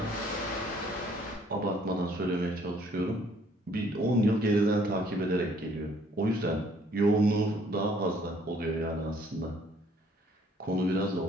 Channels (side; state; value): both; normal; correlation 0.62